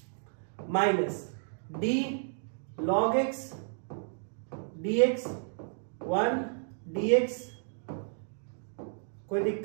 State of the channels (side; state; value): left; silent; 56 dB below the other